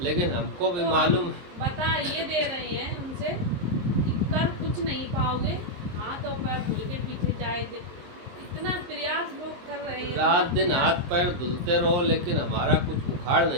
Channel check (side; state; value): left; late; 23 ms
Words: लेकिन हमको भी तो मालूम। हम बता ये दे रहे हैं उनसे कि कर कुछ नहीं पाओगे, हाथ और पैर धुल के पीछे जाएंगे। इतना प्रयास लोग कर रहे हैं, रात इतना दिन हाथ प्रयास। पैर धुलते रहो, लेकिन हमारा कुछ उखाड़